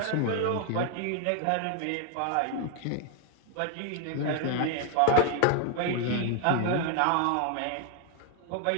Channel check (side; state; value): both; different; correlation 0.00